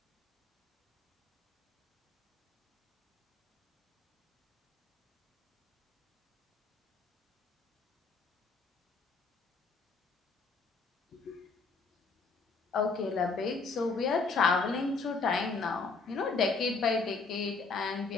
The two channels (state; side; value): quieter; right; 4.3 dB